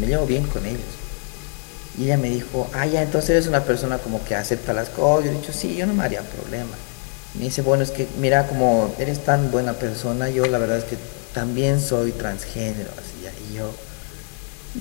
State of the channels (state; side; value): quieter; right; 38.6 dB